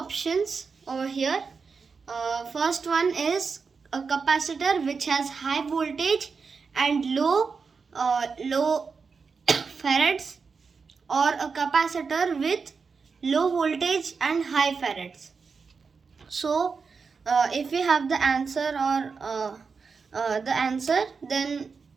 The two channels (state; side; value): quieter; left; 5.1 dB